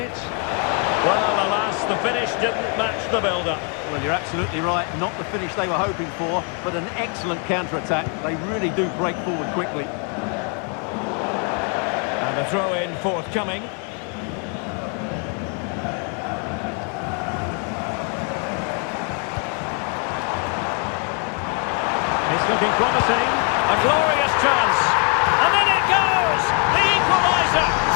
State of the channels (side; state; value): right; quieter; 39.1 dB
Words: Well, alas, the finish didn't match the build-up. Well, you're absolutely right. Not the finish they were hoping for, but an excellent counter-attack. They really do break forward quickly. And a throw-in forthcoming. It's looking promising. A glorious chance. And then it goes! The equaliser!